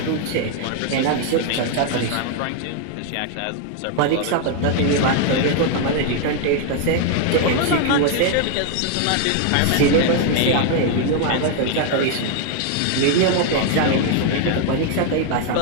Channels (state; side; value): different; both; correlation 0.00